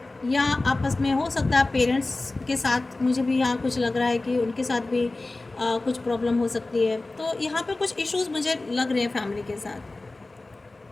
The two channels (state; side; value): quieter; right; 3.1 dB